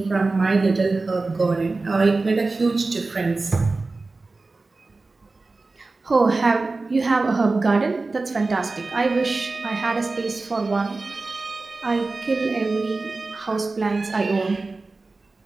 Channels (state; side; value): quieter; left; 3.5 dB